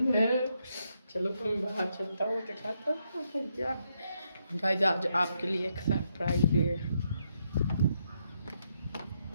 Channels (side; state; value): both; inverted; correlation -0.78